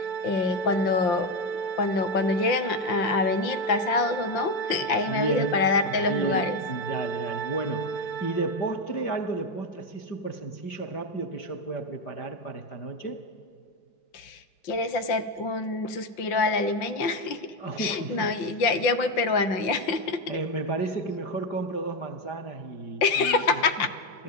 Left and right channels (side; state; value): right; late; 5.7 ms